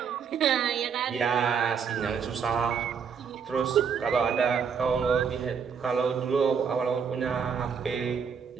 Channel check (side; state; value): left; quieter; 6.6 dB